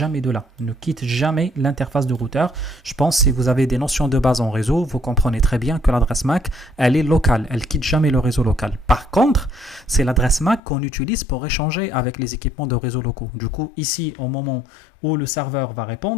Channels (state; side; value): drops out; right; at 10.6 s